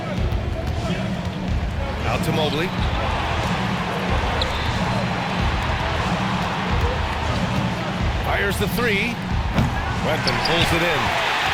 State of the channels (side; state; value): both; identical; correlation 1.00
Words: Out to Mobley. Fires the 3. Wetman pulls it in.